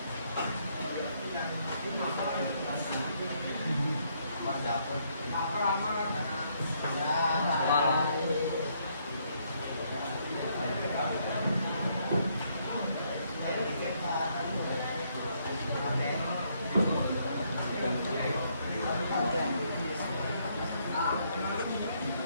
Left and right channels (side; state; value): both; inverted; correlation -0.72